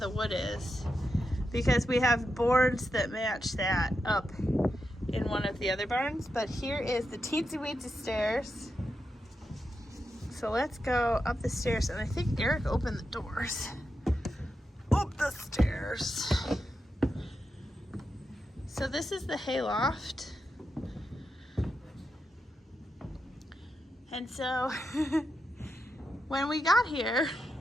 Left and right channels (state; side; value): normal; both; correlation 0.87